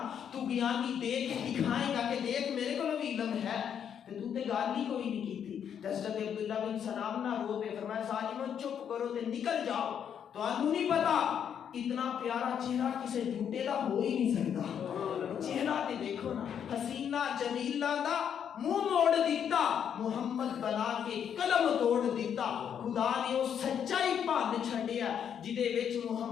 تو بیانی دے کے دکھائے گا کہ دیکھ میرے کو بھی علم ہے، تو تے گال ہی کوئی نہیں کی تھی۔ حضرت عبداللہ بن سلام نہ رو پہ فرمایا ظالموں چپ کرو تے نکل جاؤ، تو آنو نہیں پتا اتنا پیارا چہرہ کسے جھوٹے دا ہو ہی نہیں سکتا، چہرہ تے دیکھو نا، حسینہ جمیلہ دا منہ موڑ دیتا، محمد بنا کے قلم توڑ دیتا، خدا نے وہ سچائی بھن چھڈیا جدے وچ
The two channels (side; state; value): right; quieter; 8.4 dB